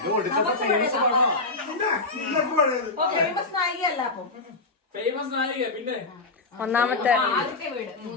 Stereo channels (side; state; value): right; quieter; 3.4 dB